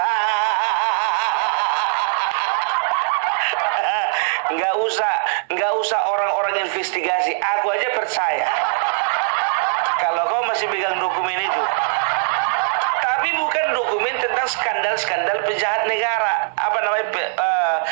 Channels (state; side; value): silent; left; digital silence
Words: Nggak usah orang-orang investigasi. Aku aja percaya kalau kau masih pegang dokumen itu. Tapi bukan dokumen tentang skandal-skandal pejahat negara,